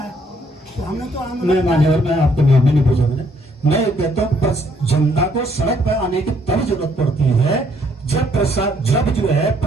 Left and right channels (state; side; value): normal; both; correlation 0.68